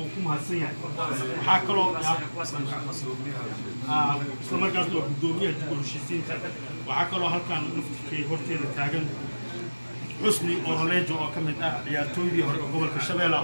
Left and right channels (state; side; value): inverted; both; correlation -1.00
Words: ku mahadsan yahay. waxaa kaloo isla markaasna waa gudoomiyaha dib u heshiisiinta. waxaa kaloo halkan naftirkay horteeda taagan Xusni Orolejo oo ka mid ah ciyaartooydii hore ee gobolka